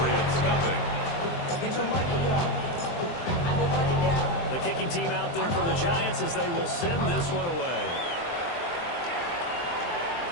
nothing. Get your money up. Your money down. The kicking team out there for the Giants as they will send this one away.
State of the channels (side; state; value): right; late; 23 ms